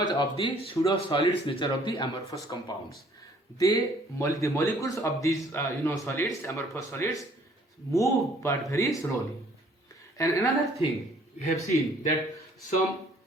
of the pseudo solids nature of the amorphous compounds. The molecules of these solids, amorphous solids, move but very slowly. And another thing we have seen that some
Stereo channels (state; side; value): normal; both; correlation 0.59